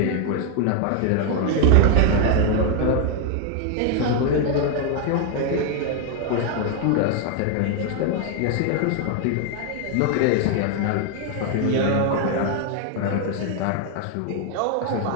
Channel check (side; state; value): both; different; correlation 0.01